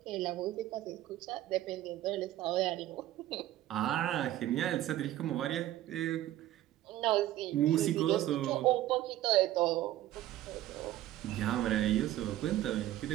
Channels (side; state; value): left; quieter; 14.2 dB